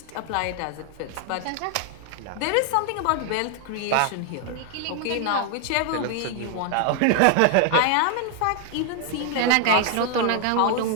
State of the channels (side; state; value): both; different; correlation 0.00